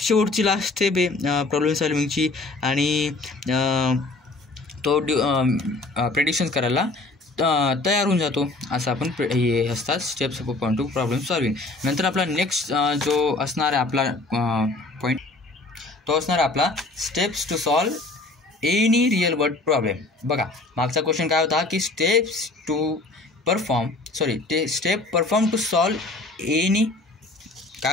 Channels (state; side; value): quieter; right; 3.1 dB